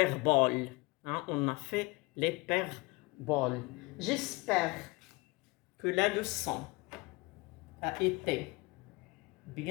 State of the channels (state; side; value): quieter; right; 24.7 dB